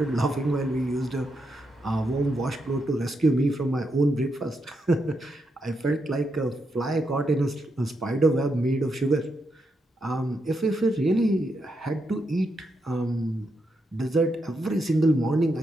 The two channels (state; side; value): normal; both; correlation 0.82